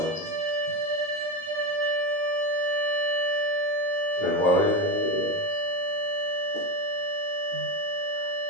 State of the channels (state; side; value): late; left; 18 ms